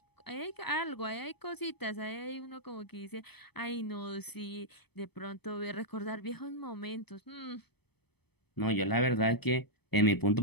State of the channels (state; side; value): late; right; 0.98 ms